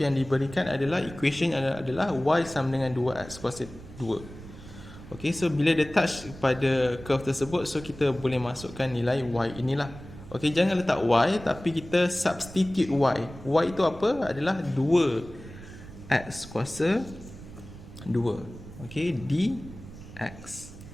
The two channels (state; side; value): noise; right; rumble, 16 dB below the sound